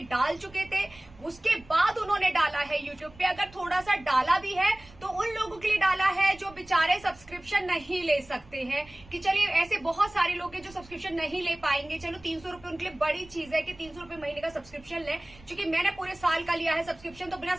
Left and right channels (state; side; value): noise; right; rumble, 23 dB below the sound